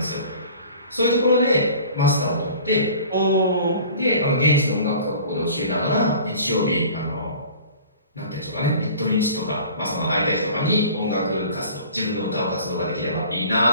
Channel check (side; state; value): both; inverted; correlation -0.45